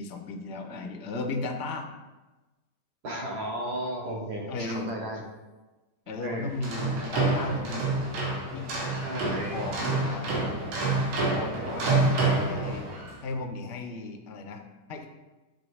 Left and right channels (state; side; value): late; left; 10 ms